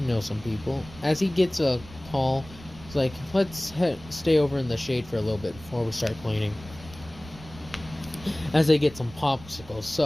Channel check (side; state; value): right; noise; rumble, 18 dB below the sound